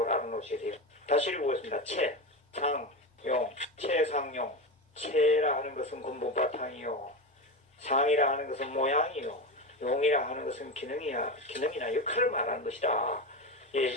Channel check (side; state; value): both; normal; correlation 0.20